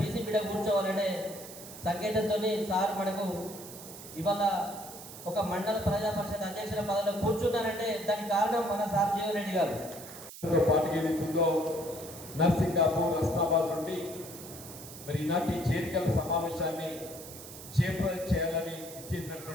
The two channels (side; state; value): right; noise; hiss, 14 dB below the sound